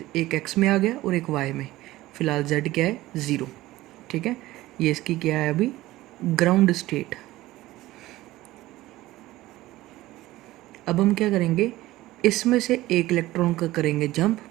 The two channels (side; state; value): left; quieter; 17.0 dB